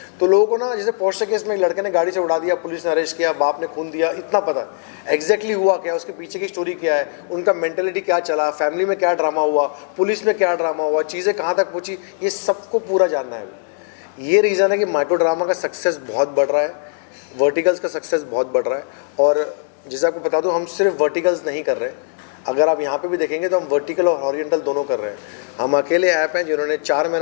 तो लोगों को ना जैसे पोर्शे केस में एक लड़के ने गाड़ी से उड़ा दिया, पुलिस ने अरेस्ट किया, बाप ने खून दिया, इतना पता है एग्जैक्टली हुआ क्या, उसके पीछे की स्टोरी क्या है, उनका मेंटेलिटी क्या चला, फैमिली में क्या ड्रामा हुआ, पुलिस में क्या ड्रामा हुआ, चीज़ें कहाँ तक पहुँची, ये सबको पूरा जानना है। ये रीज़न है कि माइक्रो ड्रामा का सक्सेस बहुत बढ़ रहा है, वर्टिकल्स का सक्सेस बहुत बढ़ रहा है। और जैसे आपको बता दूं, हम सिर्फ वर्टिकल्स नहीं कर रहे, अगर आप यहाँ पे भी देखेंगे तो हम वर्टिकल और हॉरिजॉन्टल दोनों कर रहे हैं। हम अकेले ऐप हैं जिन्होंने 4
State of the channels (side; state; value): right; silent; 58 dB below the other